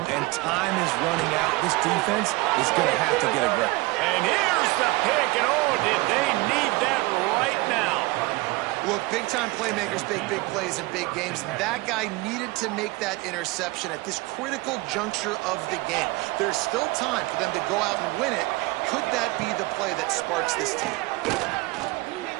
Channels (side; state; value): left; quieter; 22.6 dB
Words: and time is running out. This defense is going to have to get aggressive. And here's the pick, and oh, did they need that right now. Look, big-time playmakers make big plays in big games. That guy needed to make that interception at this critical juncture of the game. There's still time for them to go out and win it. Could that be the play that sparks this team?